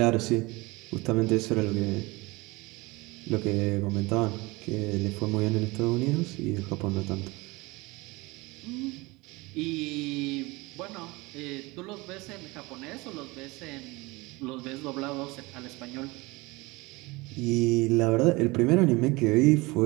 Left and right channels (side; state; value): left; quieter; 23.4 dB